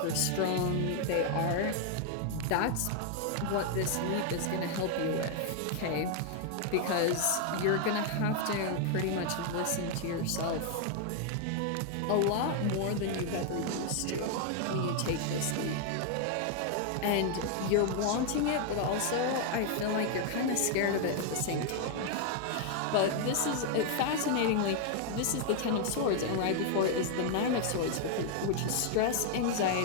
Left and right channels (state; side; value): different; both; correlation 0.00